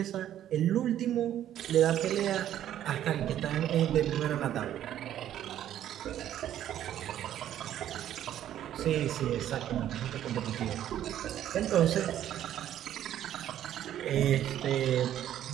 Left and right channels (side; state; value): left; quieter; 11.4 dB